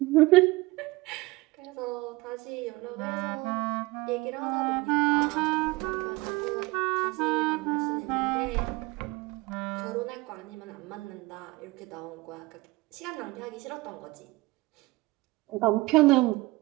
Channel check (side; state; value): left; quieter; 21.7 dB